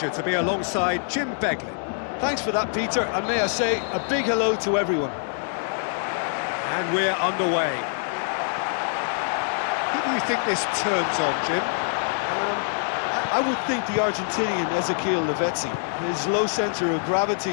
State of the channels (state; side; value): silent; right; 62 dB below the other